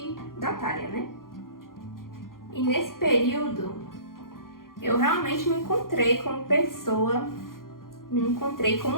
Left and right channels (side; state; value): right; late; 0.91 ms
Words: da Thalia, né? E nesse período, eu realmente me encontrei como pessoa, me encontrei